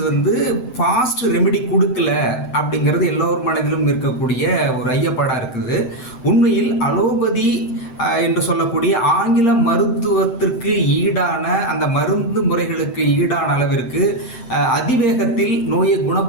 ஃபாஸ்ட் ரெமெடி கொடுக்கல அப்படிங்கிறது எல்லோரும் மனதிலும் இருக்கக்கூடிய ஒரு ஐயப்பாடாக இருக்குது. உண்மையில் அலோபதி என்று சொல்லக்கூடிய ஆங்கில மருத்துவத்திற்கு ஈடான அந்த மருந்து முறைகளுக்கு ஈடான அளவிற்கு அதிவேகத்தில் நோயை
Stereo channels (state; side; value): late; right; 7.8 ms